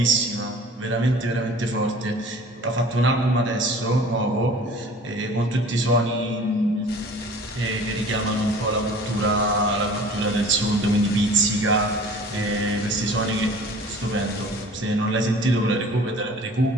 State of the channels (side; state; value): both; normal; correlation 0.45